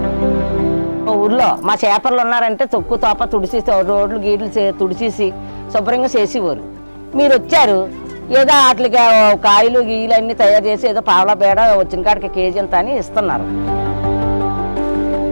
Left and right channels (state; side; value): inverted; both; correlation -1.00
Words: ఊర్లో మా చేపర్లు ఉన్నారంటే తొక్కు తోప తుడిసి రోడ్లు గీట్లు తుడిచేసి శుభ్రంగా చేసేవారు. మీరు వచ్చారు, ఏదో వాటికి కాయలు గీయలు అన్నీ తయారు చేసి ఏదో పావలా బేడ వచ్చిన కాడికి కేజీ అంత అని ఇస్తున్నారు.